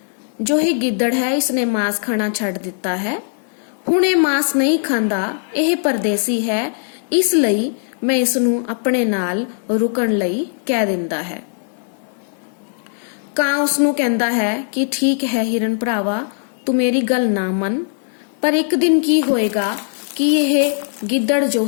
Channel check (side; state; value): right; silent; digital silence